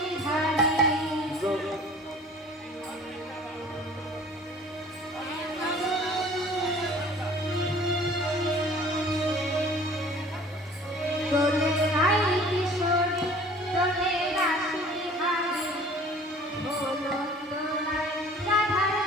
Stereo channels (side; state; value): both; normal; correlation 0.49